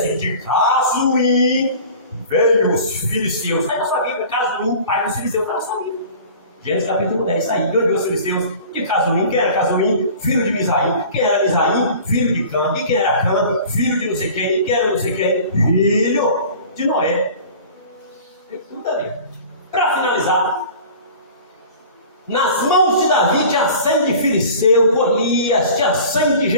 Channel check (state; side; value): inverted; both; correlation -0.42